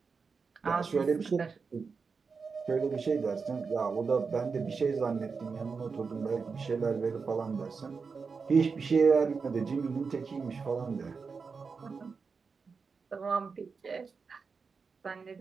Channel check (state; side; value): quieter; left; 5.1 dB